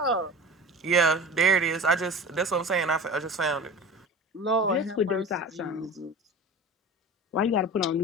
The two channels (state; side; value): normal; both; correlation 0.34